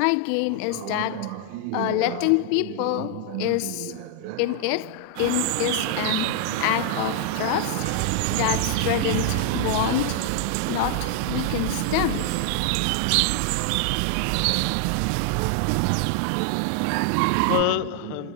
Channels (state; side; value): different; both; correlation 0.00